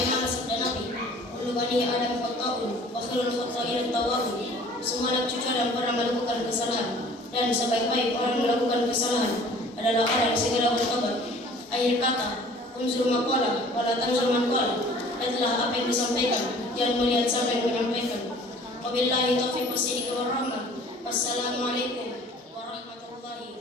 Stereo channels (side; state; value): both; normal; correlation 0.50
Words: sabda Nabi, kullu bani Adam khata'un wa khairul khata'in at-tawwabun. Semua anak cucu Adam pernah melakukan kesalahan, dan sebaik-baik orang melakukan kesalahan adalah orang yang segera bertobat. Akhir kata, unzur maqala wala tanzur man qala. Adalah apa yang disampaikan, jangan melihat siapa yang menyampaikan. Wabillahi taufiq wassalamu warahmah. Wassalamualaikum